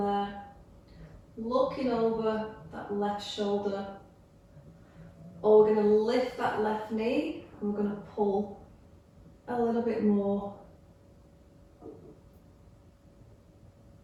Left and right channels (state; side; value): identical; both; correlation 1.00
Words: looking over that left shoulder. Or we're going to lift that left knee and we're going to pull a little bit more.